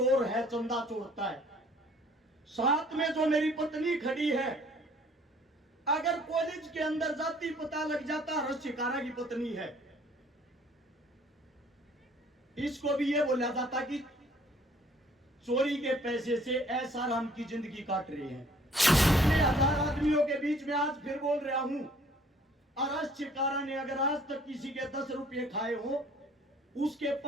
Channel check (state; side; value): normal; both; correlation 0.57